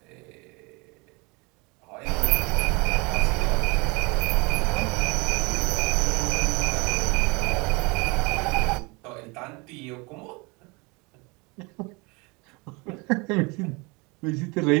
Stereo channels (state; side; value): quieter; left; 27.7 dB